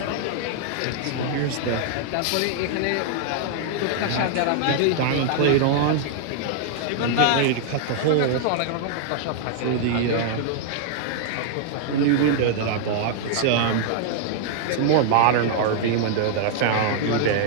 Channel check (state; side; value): different; both; correlation -0.01